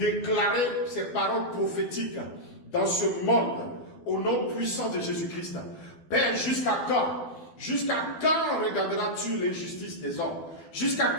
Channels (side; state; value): right; late; 12 ms